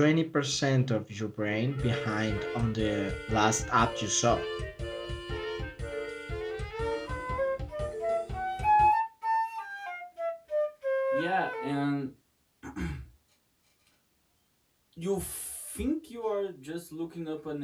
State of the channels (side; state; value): both; identical; correlation 1.00